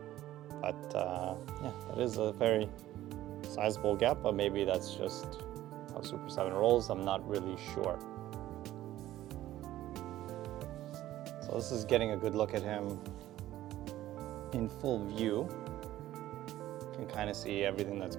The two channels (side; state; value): left; quieter; 14.2 dB